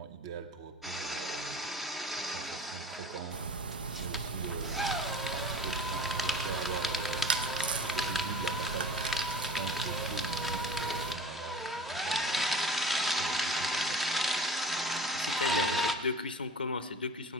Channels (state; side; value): normal; both; correlation 0.39